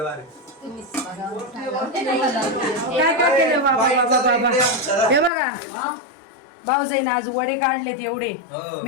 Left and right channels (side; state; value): right; drops out; at 5.3 s